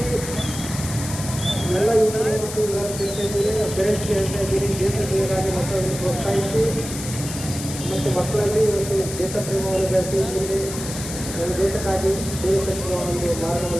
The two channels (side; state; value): left; noise; hiss, 9 dB below the sound